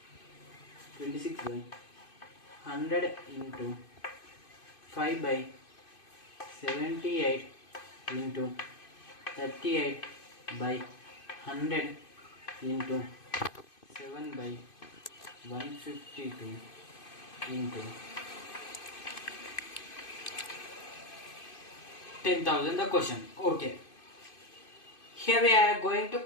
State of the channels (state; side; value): late; right; 2.5 ms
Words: 26 by 100 into 5 by 78 into 38 by 100 into 7 by 152 into 10,000 the question. Okay. Here we are going to